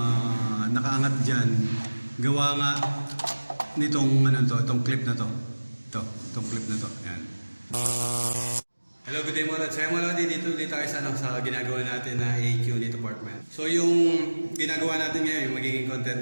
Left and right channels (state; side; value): inverted; both; correlation -1.00